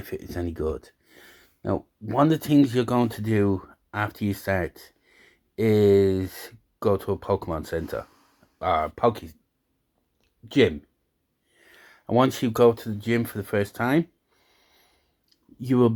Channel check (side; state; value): both; identical; correlation 1.00